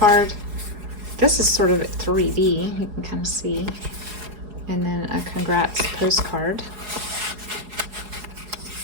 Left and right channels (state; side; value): late; left; 4.8 ms